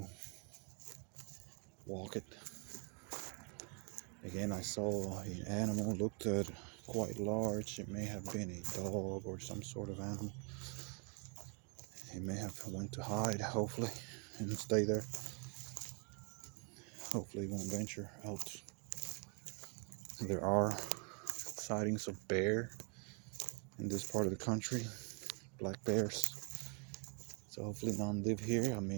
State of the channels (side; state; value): left; quieter; 35.8 dB